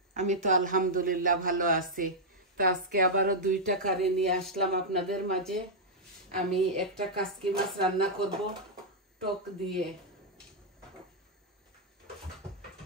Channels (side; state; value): both; normal; correlation -0.06